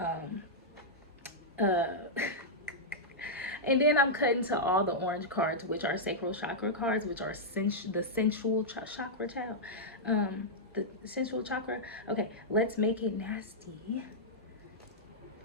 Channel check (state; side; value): normal; both; correlation -0.08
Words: And then I'm cutting to all the orange cards, which are sacral chakra cards, which are the sensual chakra, child. The sensual chakra. Okay, let's make it nasty.